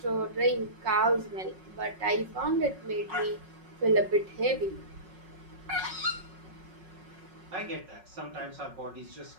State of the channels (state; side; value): late; left; 5.4 ms